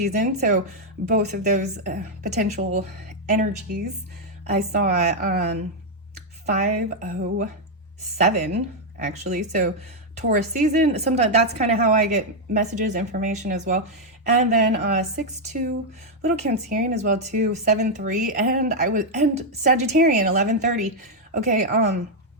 so both of those potential energies, I saw 507 actually. So Taurus season, sometimes that's kind of how I get messages, information as well. And then 6-2, little Cancerian as well too, 7-3, and Sagittarian 11:30. Okay,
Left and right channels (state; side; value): normal; both; correlation -0.01